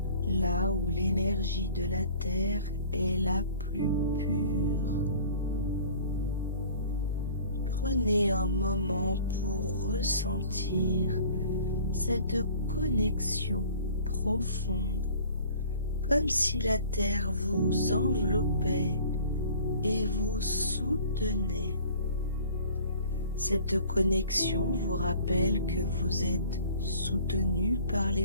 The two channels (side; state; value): both; inverted; correlation -0.49